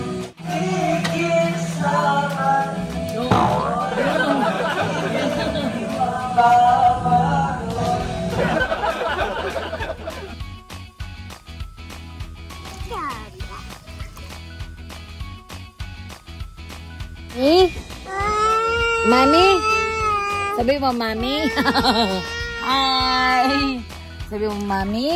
Mami? Sabi mo, Mami? Hi! Sabi mo,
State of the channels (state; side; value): identical; both; correlation 1.00